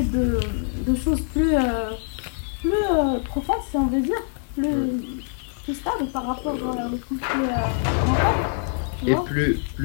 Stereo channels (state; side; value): silent; right; digital silence